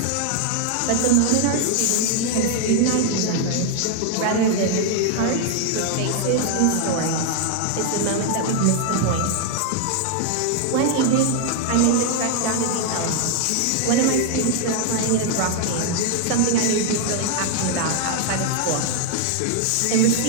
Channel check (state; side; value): different; both; correlation 0.00